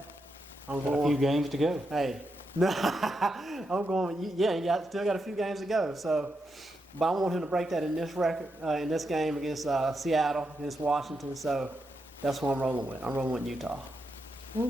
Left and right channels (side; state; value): both; normal; correlation 0.84